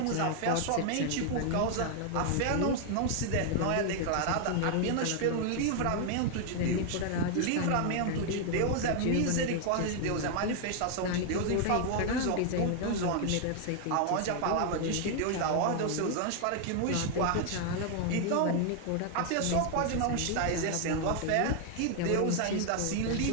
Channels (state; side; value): different; both; correlation 0.00